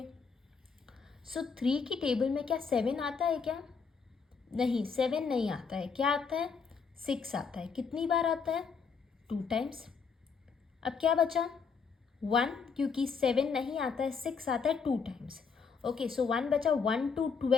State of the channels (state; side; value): quieter; right; 5.6 dB